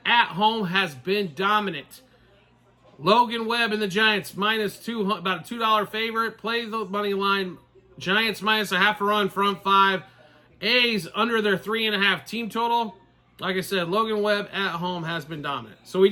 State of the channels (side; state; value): both; identical; correlation 1.00